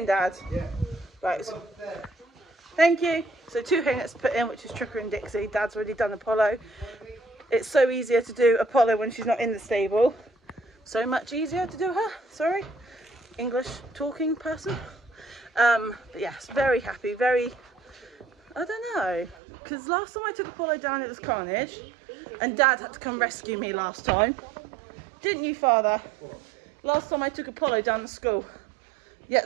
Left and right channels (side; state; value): left; drops out; at 19.4 s